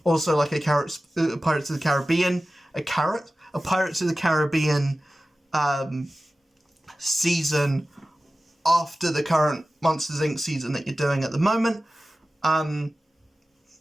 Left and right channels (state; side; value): normal; both; correlation 0.95